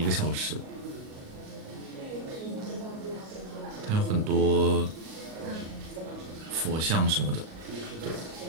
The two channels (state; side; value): late; left; 38 ms